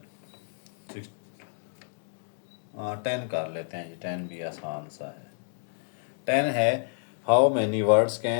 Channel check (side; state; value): right; silent; digital silence